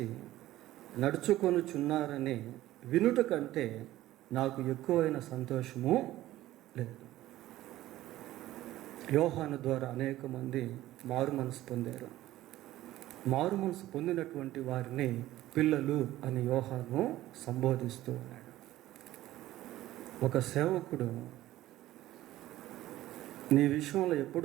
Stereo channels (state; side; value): quieter; left; 15.2 dB